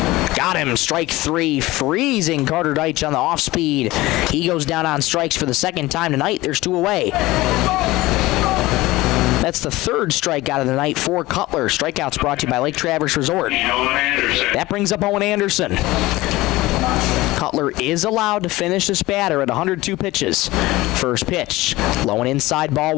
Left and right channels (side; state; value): right; quieter; 19.0 dB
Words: Got him, strike 3, freezing Carter Deitch on the off speed. He goes down on strikes for the second time tonight. There's 2 away. That's the 3rd strikeout of the night for Cutler. Strikeouts brought to you by Lake Traverse Resort. That brings up Owen Anderson. Cutler is allowed to finish this batter at 102 pitches. First pitch, low and inside, ball